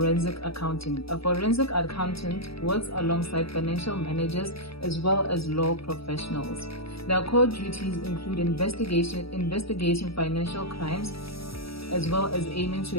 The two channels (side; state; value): right; late; 0.76 ms